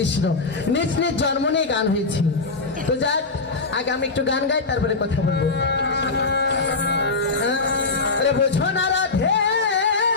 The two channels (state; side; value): quieter; right; 3.8 dB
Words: নিজ নিজ জন্ম নিয়ে গান হয়েছে। তো যাক, আগে আমি একটু গান গাই, তারপরে কথা বলবো। আরে বোঝো না রাধে